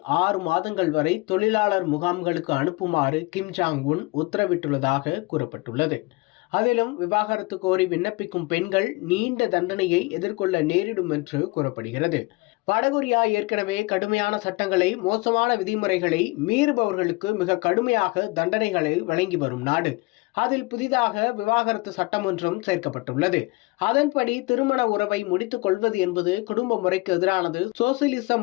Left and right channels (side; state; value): right; quieter; 24.5 dB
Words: 6 மாதங்கள் வரை தொழிலாளர் முகாம்களுக்கு அனுப்புமாறு கிம் ஜாங் உன் உத்தரவிட்டுள்ளதாக கூறப்பட்டுள்ளது. அதிலும் விவாகரத்து கோரி விண்ணப்பிக்கும் பெண்கள் நீண்ட தண்டனையை எதிர்கொள்ள நேரிடும் என்று கூறப்படுகிறது. வடகொரியா ஏற்கனவே கடுமையான சட்டங்களை, மோசமான விதிமுறைகளை மீறுபவர்களுக்கு மிக கடுமையாக தண்டனைகளை வழங்கி வரும் நாடு. அதில் புதிதாக விவாகரத்து சட்டம் ஒன்றும் சேர்க்கப்பட்டுள்ளது. அதன்படி திருமண உறவை முடித்துக் கொள்வது என்பது குடும்ப முறைக்கு எதிரானது, சோசியலிச